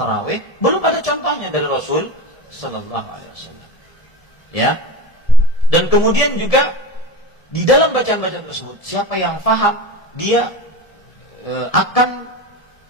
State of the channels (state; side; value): late; right; 1.7 ms